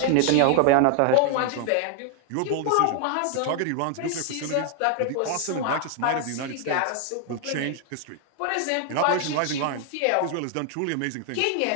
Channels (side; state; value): both; different; correlation 0.00